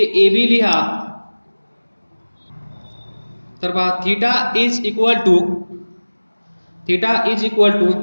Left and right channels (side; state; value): both; inverted; correlation -1.00